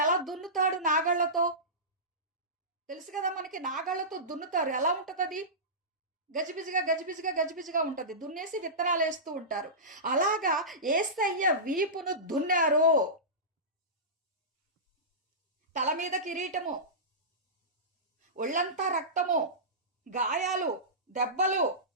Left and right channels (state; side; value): normal; both; correlation -0.19